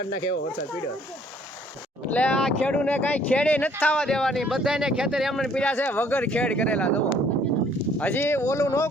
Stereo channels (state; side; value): normal; both; correlation 0.61